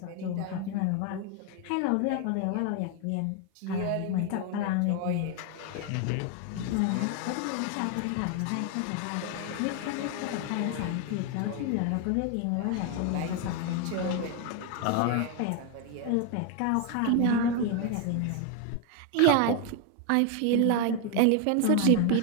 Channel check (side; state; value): both; different; correlation 0.01